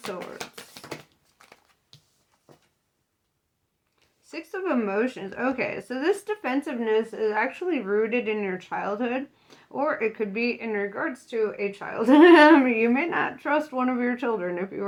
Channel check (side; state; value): both; identical; correlation 1.00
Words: Swords. Six of Emotions. Okay, so this defensiveness is actually rooted in your childhood, or it could be in regards to a child. You may not trust one of your children if you